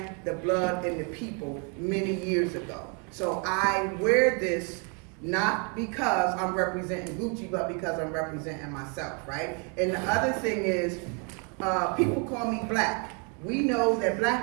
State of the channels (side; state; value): left; quieter; 36.5 dB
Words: the blood, and the people many years ago. So I wear this not because I'm representing Gucci, but because I'm representing myself, right? And the other thing is, people call me black. We know that